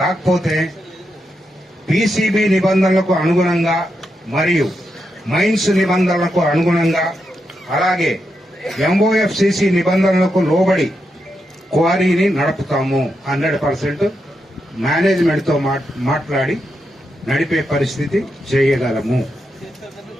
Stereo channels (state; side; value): normal; both; correlation 0.84